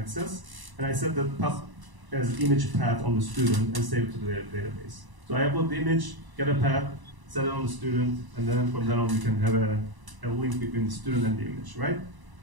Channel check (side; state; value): left; late; 1.0 ms